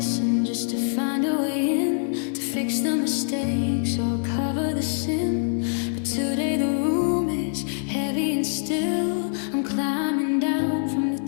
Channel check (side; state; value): right; silent; 60 dB below the other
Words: just to find a way in, to fix the mistakes or cover the sin. But today the room is heavy and still. I'm climbing down from the